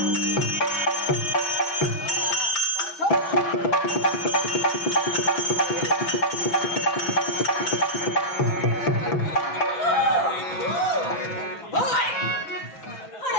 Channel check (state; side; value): late; right; 6.0 ms